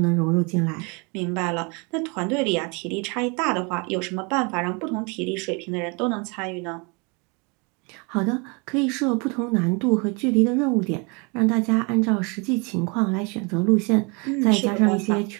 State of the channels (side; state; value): left; quieter; 31.3 dB